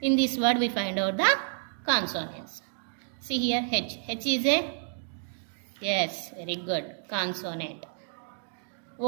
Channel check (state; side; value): silent; left; digital silence